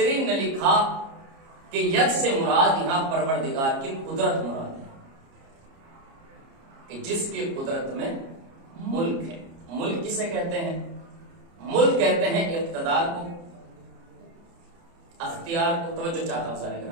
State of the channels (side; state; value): left; late; 30 ms